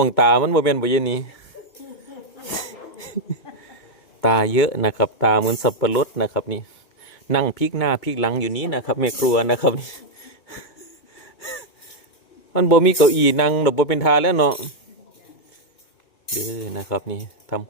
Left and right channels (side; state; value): right; late; 2.2 ms